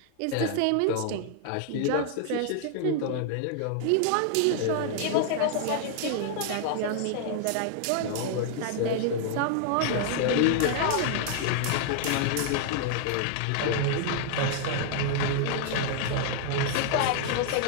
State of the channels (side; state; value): both; different; correlation 0.00